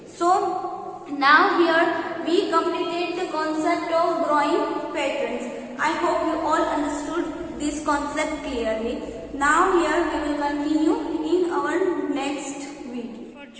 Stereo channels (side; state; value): both; identical; correlation 1.00